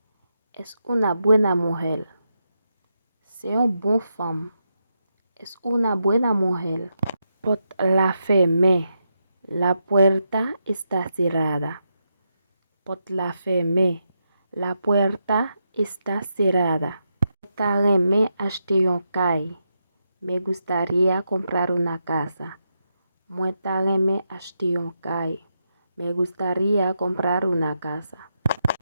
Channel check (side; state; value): both; inverted; correlation -0.84